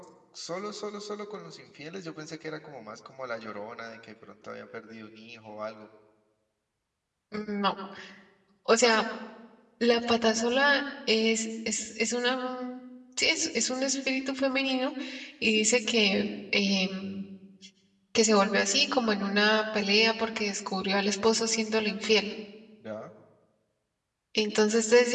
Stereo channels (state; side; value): identical; both; correlation 1.00